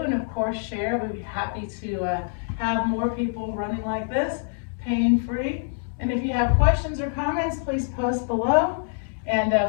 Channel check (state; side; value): silent; right; digital silence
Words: And of course, share. We'd be happy to have more people running like this, pain-free. And if you have questions or comments, please post below. And